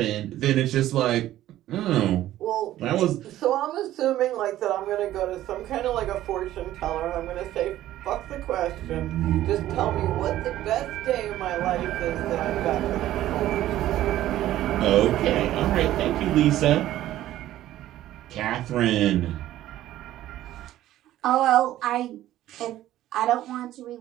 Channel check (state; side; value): quieter; left; 13.8 dB